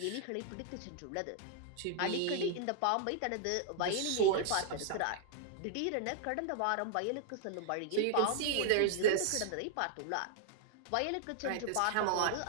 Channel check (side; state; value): both; different; correlation 0.00